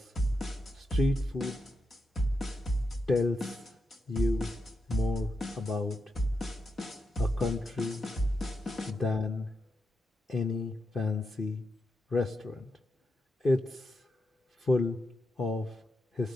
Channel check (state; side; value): normal; both; correlation 0.86